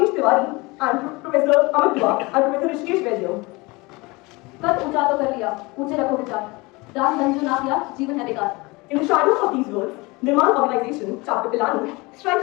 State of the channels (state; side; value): quieter; right; 24.4 dB